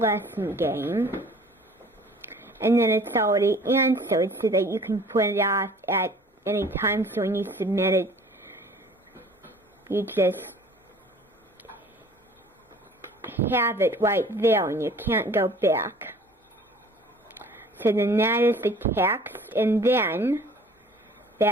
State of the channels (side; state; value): both; normal; correlation 0.50